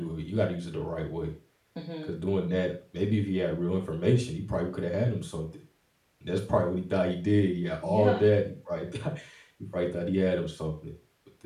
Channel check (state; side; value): identical; both; correlation 1.00